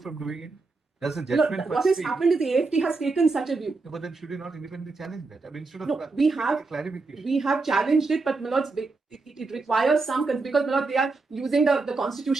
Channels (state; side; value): quieter; left; 3.8 dB